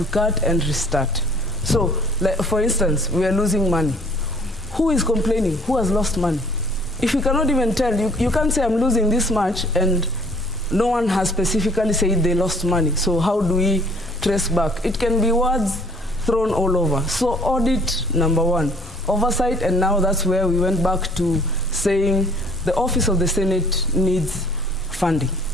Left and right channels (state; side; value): normal; both; correlation 0.56